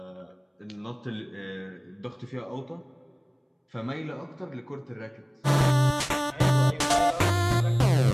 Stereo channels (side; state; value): both; identical; correlation 1.00